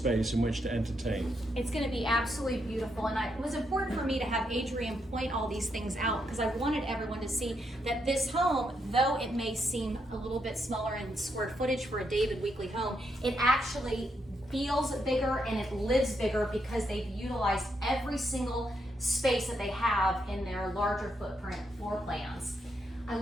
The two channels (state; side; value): normal; both; correlation 0.80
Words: in which to entertain. It's going to be absolutely beautiful, and it was important for me to have Adrian point all these things out because I wanted everyone to see that this home, though it may seem a little bit smaller in square footage for a David Weekley home, it actually feels bigger and it lives bigger because they've utilized every single space that they have in their larger footprint floor plans. I